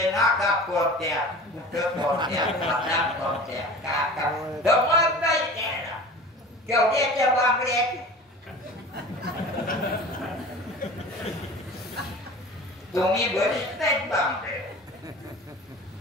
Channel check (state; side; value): normal; both; correlation 0.38